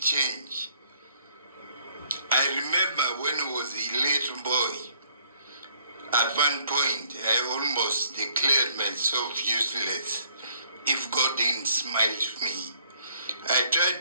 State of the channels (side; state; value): both; inverted; correlation -0.63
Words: I remember when I was a little boy, at one point, I almost declared myself useless if God didn't smile to me. I